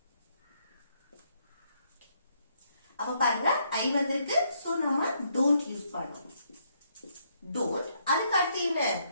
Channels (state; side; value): inverted; both; correlation -0.73